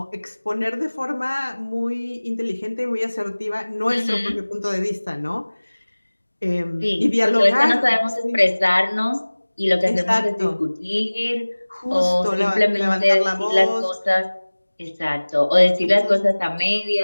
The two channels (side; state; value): both; inverted; correlation -1.00